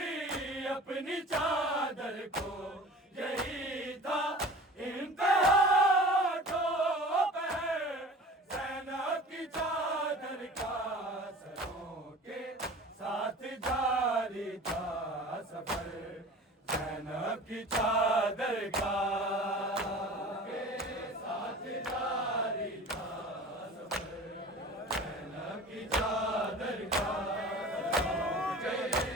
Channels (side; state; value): both; normal; correlation 0.40